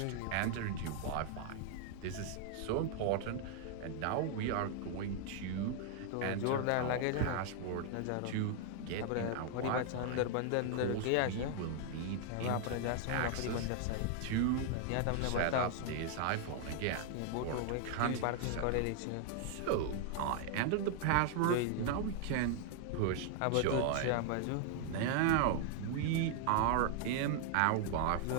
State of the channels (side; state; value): both; different; correlation 0.00